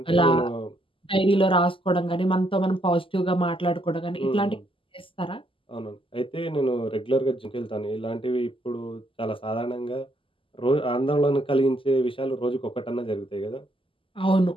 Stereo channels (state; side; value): late; right; 0.25 ms